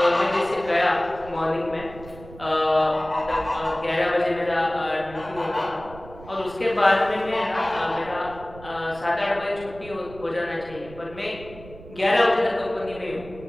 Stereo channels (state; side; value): noise; right; rumble, 17 dB below the sound